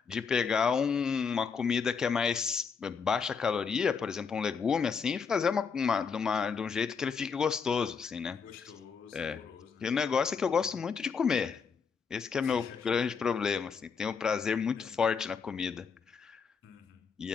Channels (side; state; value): right; quieter; 5.9 dB